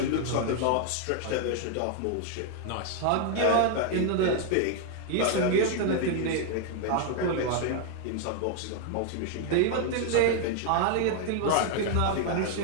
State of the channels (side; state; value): both; different; correlation 0.00